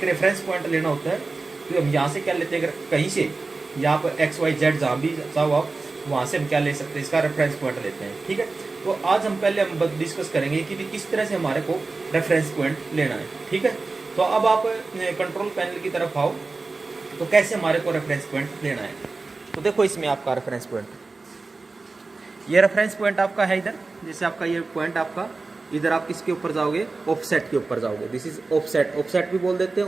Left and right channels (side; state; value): left; quieter; 3.7 dB